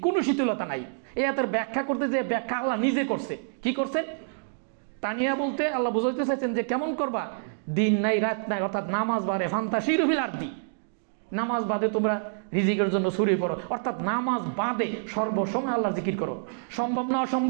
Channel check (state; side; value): silent; left; digital silence